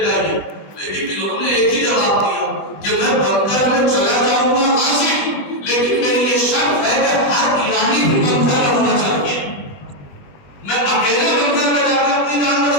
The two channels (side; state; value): right; late; 20 ms